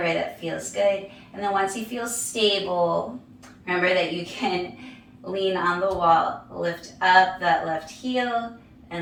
that feels good. And then once you feel stable, remember that you can lean on the wall, lift up that left heel,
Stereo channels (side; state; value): both; identical; correlation 1.00